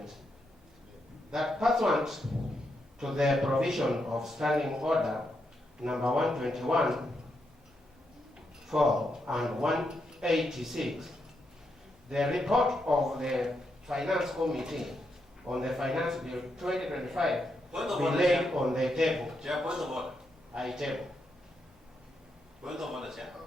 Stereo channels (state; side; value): normal; both; correlation 0.82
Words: that pursuant to the provision of Standing Order number 121, 4 and 186, the report of the Finance Committee on the Finance Bill 2025 be laid on the table. Chair, point of order. I table. Point of order, Chair.